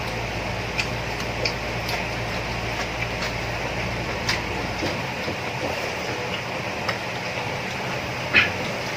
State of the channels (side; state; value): both; identical; correlation 1.00